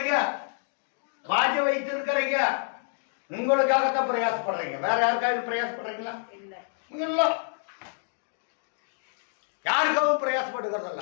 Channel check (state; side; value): silent; right; digital silence